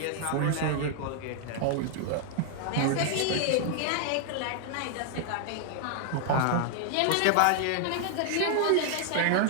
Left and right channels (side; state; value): both; different; correlation 0.00